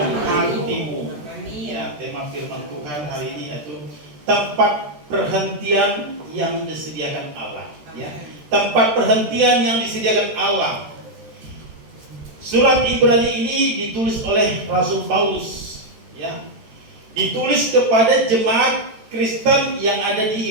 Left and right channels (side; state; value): left; late; 13 ms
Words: hatimu. Ya, tema firman Tuhan hari ini yaitu tempat perhentian yang disediakan Allah. Ya, tempat perhentian yang disediakan Allah. Surat Ibrani ini ditulis oleh Rasul Paulus, ya. Ditulis kepada jemaat Kristen yang ada